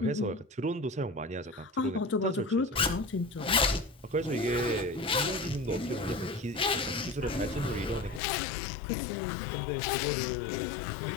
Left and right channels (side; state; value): right; drops out; at 8.2 s